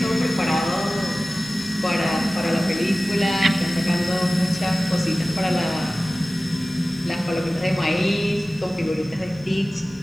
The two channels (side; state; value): both; normal; correlation 0.97